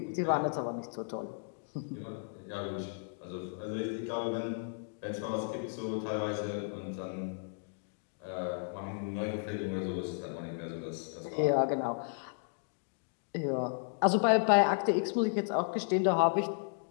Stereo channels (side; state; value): right; silent; digital silence